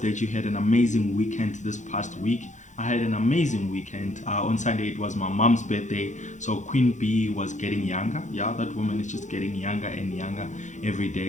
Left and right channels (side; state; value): right; late; 0.35 ms